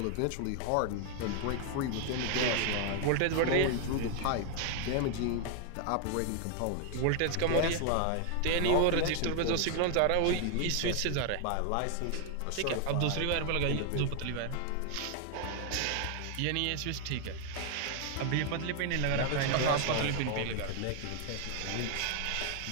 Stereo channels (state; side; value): different; both; correlation 0.00